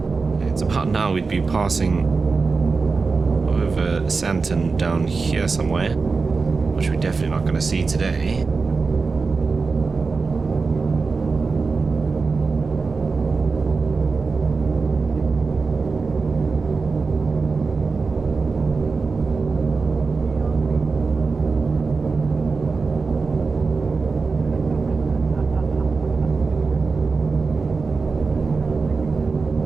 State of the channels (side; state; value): left; quieter; 4.4 dB